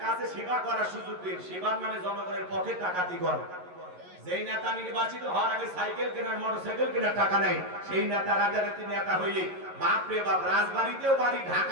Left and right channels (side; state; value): left; late; 11 ms